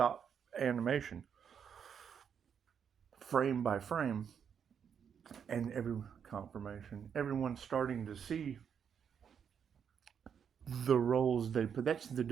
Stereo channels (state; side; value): quieter; left; 7.6 dB